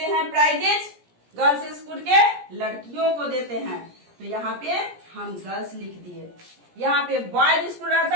हैं प्राइजेज, गर्ल्स स्कूल के लड़कियों को देते हैं। तो यहाँ पे हम गर्ल्स लिख दिए। यहाँ पे बॉयज स्कूल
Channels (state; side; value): late; left; 17 ms